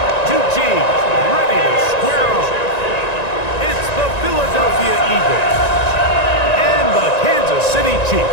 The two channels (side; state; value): right; late; 1.9 ms